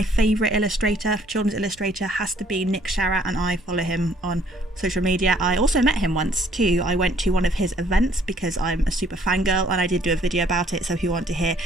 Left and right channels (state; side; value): normal; both; correlation 0.61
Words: favourite illustrator, children's illustrator, has to be Nick Sharratt, and I follow him on social media. I also met him once too. I went to one of his events because I'm a super fangirl, and I did do a video about it, so if you want to hear